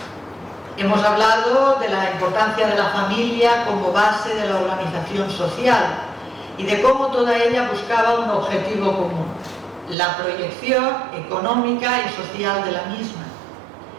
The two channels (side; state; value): left; drops out; at 10.0 s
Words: Hemos hablado de la importancia de la familia como base de la organización social y de cómo toda ella buscaba un objetivo común, la proyección económica y social de la misma.